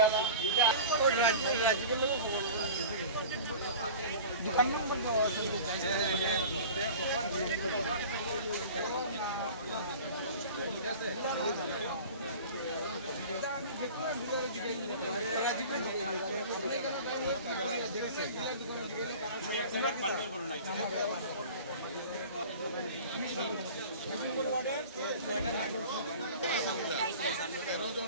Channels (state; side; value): inverted; both; correlation -0.39